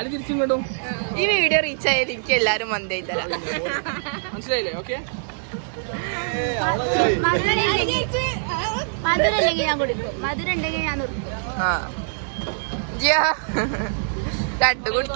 കിട്ടും. ഈ വീഡിയോ റീച്ച് ആയാലും എനിക്ക് എല്ലാരും മന്തായി തരാം. മനസ്സിലായില്ലേ? ഓക്കെ, മധുരം ഇല്ലെങ്കിൽ ഞാൻ കുടിക്കും, മധുരം ഉണ്ടെങ്കിൽ ഞാൻ നിർത്തും. 2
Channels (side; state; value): left; silent; digital silence